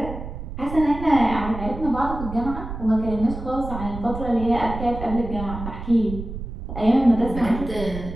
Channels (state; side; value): noise; right; rumble, 8 dB below the sound